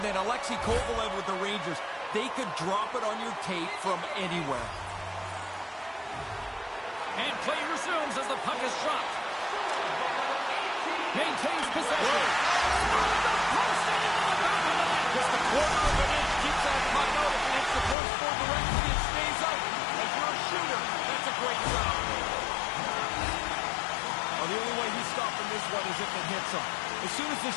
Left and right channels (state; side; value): drops out; right; at 17.9 s